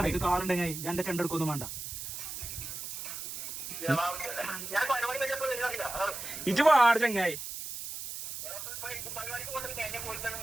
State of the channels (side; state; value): right; noise; hiss, 7 dB below the sound